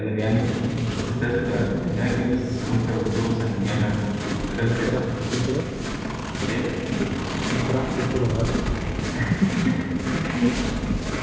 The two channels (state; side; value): identical; both; correlation 1.00